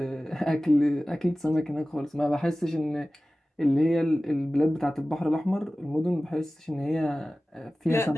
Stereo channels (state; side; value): normal; both; correlation 0.97